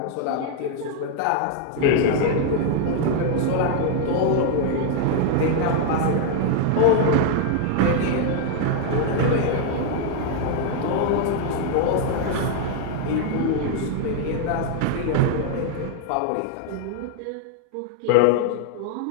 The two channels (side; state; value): both; different; correlation 0.00